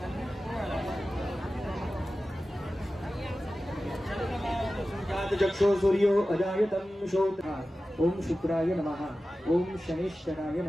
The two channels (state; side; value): normal; both; correlation 0.95